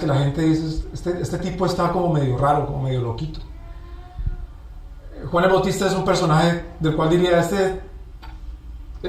la gente dice, este tipo está como medio raro, como medio loquito. Juan el Bautista es un personaje del cual diría, este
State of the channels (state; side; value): identical; both; correlation 1.00